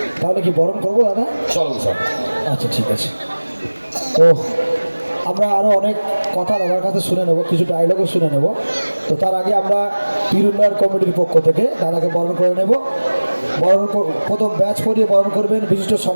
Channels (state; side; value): inverted; both; correlation -1.00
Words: তাহলে কি বরণ করবো দাদা? চলো স্যার আচ্ছা ঠিক আছে। তো আমরা আরও অনেক কথা দাদার কাছে শুনে নেব, কিছু ডায়লগও শুনে নেব। তো তার আগে আমরা পীর উন্নয়ন কমিটির পক্ষ থেকে দাদাকে বরণ করে নেব। প্রথম ব্যাচ পরিয়ে বরণ করবেন বিশিষ্ট